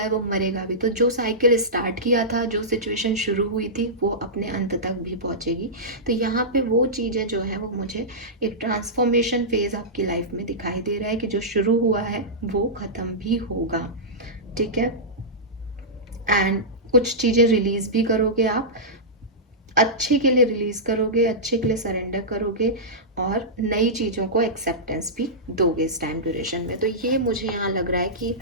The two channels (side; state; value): both; normal; correlation -0.14